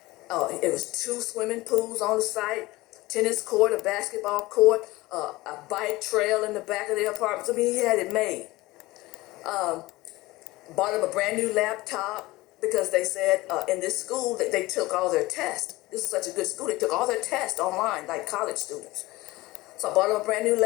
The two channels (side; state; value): right; quieter; 19.7 dB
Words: It was 2 swimming pools on the site, tennis court, a basketball court, a bike trail in the back of the apartment. I mean, he had it made. Bought him a brand new laptop, because they said in this school that they took all their tests. This is such a good school. They took all their tests online, like college students. So I bought him a brand new